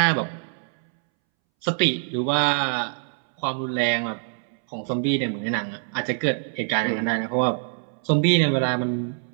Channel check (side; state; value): left; silent; 62 dB below the other